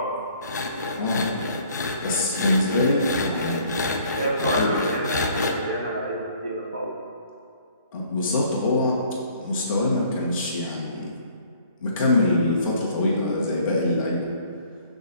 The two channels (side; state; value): both; inverted; correlation -0.58